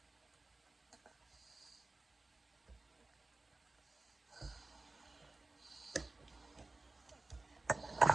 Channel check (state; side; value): quieter; left; 3.2 dB